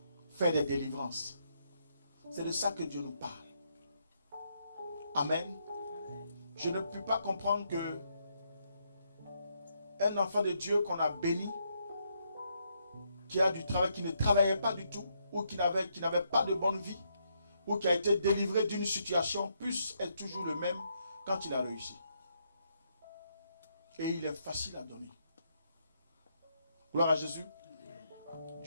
faire des délivrances. C'est de ça que Dieu nous parle. Amen. Je ne peux pas comprendre que un enfant de Dieu qu'on a béni, qui a du travail, qui ne travaillait pas du tout, ou qui n'avait pas de bonne vie, ou qui a été délivré d'une situation, puisse être toujours le même quand il a réussi. Et il est facile à donner. Gloire à Jésus.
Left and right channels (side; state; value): both; inverted; correlation -0.76